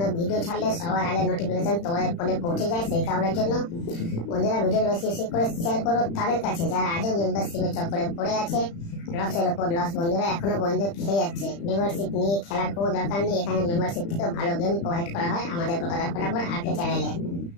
ভিডিও ছাড়লে সবার আগে নোটিফিকেশন তোমাদের ফোনে পৌঁছে যায়। সেই কারণের জন্য বন্ধুরা ভিডিওটা বেশি বেশি করে শেয়ার করো তাদের কাছে যারা আজও মেম্বারশিপের চক্করে পড়ে আছে। লসের ওপর লস বন্ধুরা এখনো পর্যন্ত খেয়ে যাচ্ছে। মেম্বারশিপ নিয়ে খেলার কোনো দরকার নেই, এখানে মেম্বারশিপ থেকে ভালো গেম প্রোভাইড করা হয় আমাদের কলকাতা ফটাফট আর্কেড চ্যানেলে।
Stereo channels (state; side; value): late; right; 35 ms